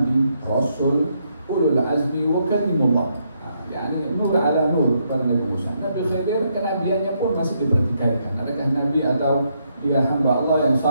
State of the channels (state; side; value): inverted; both; correlation -0.76